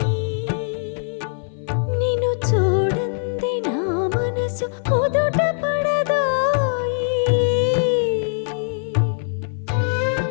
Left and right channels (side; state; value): right; silent; 56 dB below the other